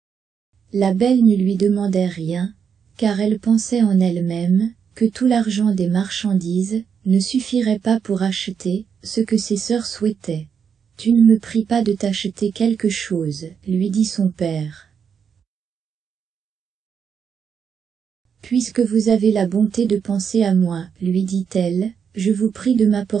La belle ne lui demandait rien, car elle pensait en elle-même, que tout l'argent des marchandises ne suffirait pas pour acheter ce que ses sœurs souhaitaient. « Tu ne me pries pas de t'acheter quelque chose, lui dit son père. Puisque vous avez la bonté de penser à moi, lui dit-elle, je vous prie de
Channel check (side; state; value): left; quieter; 7.0 dB